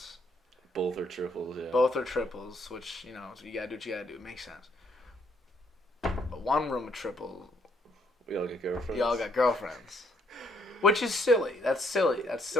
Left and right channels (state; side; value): normal; both; correlation 0.69